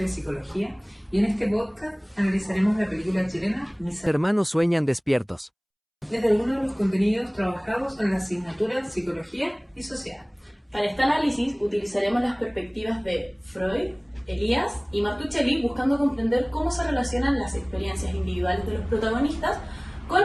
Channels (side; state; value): both; identical; correlation 1.00